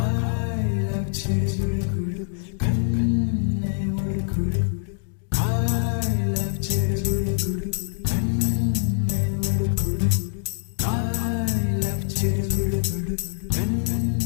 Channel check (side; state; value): right; silent; digital silence